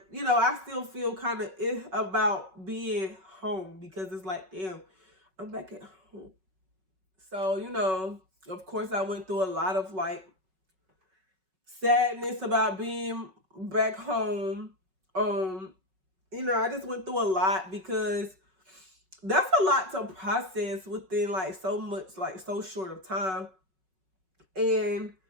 you know, I still feel kind of about being home because it's like, damn, I'm back at home. So, you know, of course, I went through a lot of, like, sadness about being back home. You know, I just went through a lot because that's a lot to process within, like, so much, like, so short of time. And,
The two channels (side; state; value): left; late; 5.4 ms